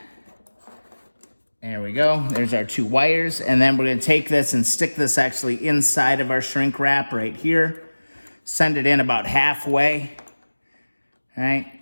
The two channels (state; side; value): inverted; both; correlation -1.00